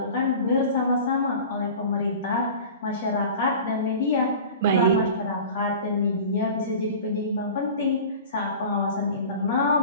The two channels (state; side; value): inverted; both; correlation -0.38